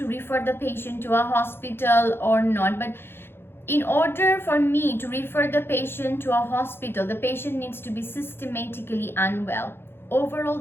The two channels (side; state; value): right; late; 0.11 ms